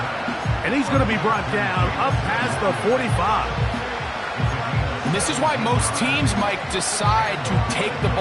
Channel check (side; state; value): both; identical; correlation 1.00